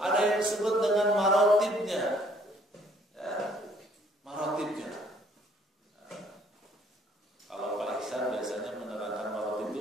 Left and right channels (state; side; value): normal; both; correlation 0.61